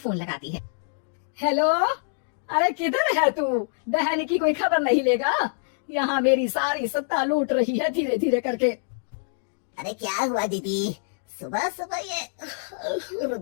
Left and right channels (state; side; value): silent; right; digital silence